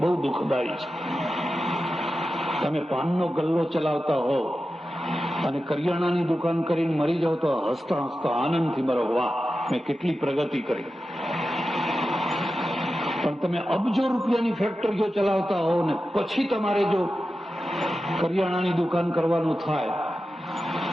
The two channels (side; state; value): both; normal; correlation 0.92